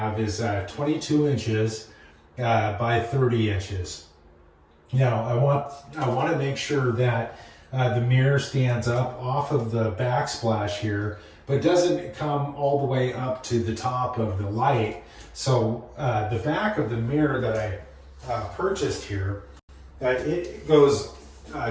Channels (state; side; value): identical; both; correlation 1.00